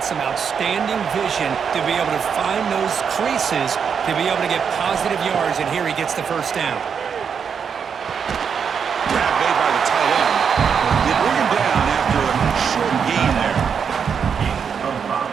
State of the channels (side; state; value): left; quieter; 6.8 dB